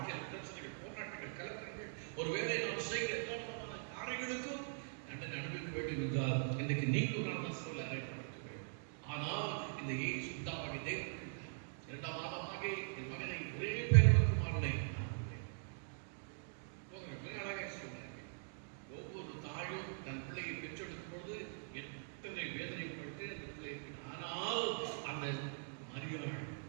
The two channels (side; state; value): left; silent; digital silence